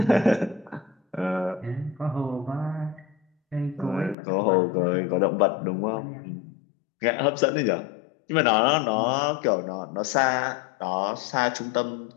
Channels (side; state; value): right; drops out; at 4.2 s